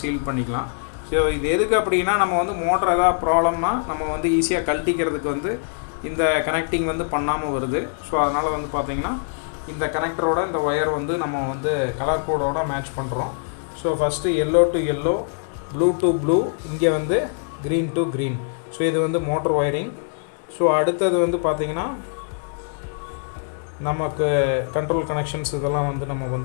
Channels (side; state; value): right; silent; digital silence